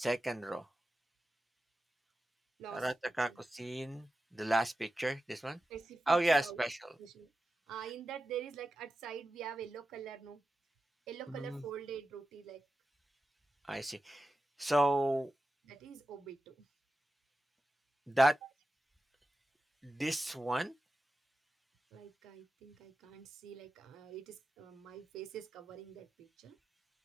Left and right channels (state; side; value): normal; both; correlation 0.92